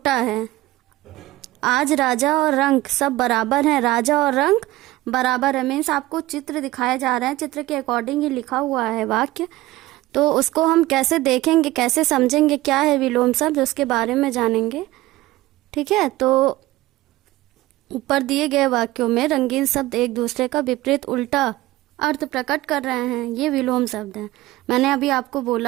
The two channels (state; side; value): quieter; left; 17.8 dB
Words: है। आज राजा और रंक सब बराबर हैं। राजा और रंक बराबर है, मीन्स आपको चित्र दिखाए जा रहे हैं, चित्र के अकॉर्डिंग ही लिखा हुआ है वाक्य। तो उसको हम कैसे देखेंगे, कैसे समझेंगे क्या है विलोम शब्द, उसके बारे में जानेंगे। ठीक है, तो ऊपर दिए गए वाक्यों में रंगीन शब्द एक दूसरे का विपरीत उल्टा अर्थ प्रकट कर रहे हैं, ये विलोम शब्द हैं। मैंने अभी आपको